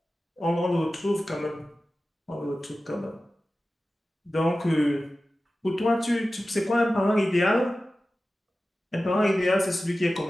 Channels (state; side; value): normal; both; correlation 0.95